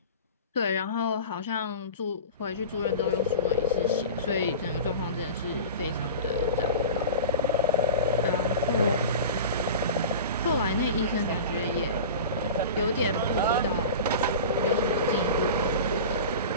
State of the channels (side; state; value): both; inverted; correlation -0.32